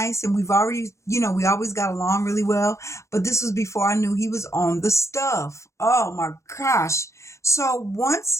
and we always got along really well. But this was before I knew he was on the stuff. Oh my gosh. So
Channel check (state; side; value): late; right; 0.14 ms